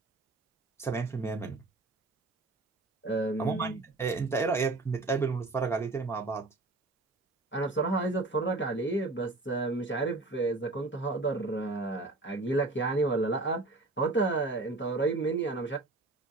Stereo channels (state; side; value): quieter; left; 3.2 dB